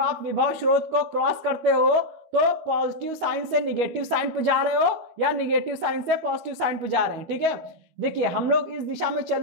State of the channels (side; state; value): left; late; 13 ms